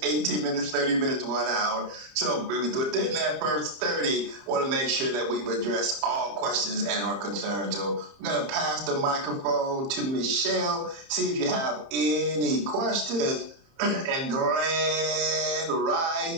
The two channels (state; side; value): late; left; 30 ms